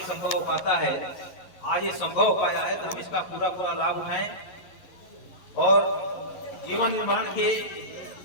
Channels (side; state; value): right; late; 11 ms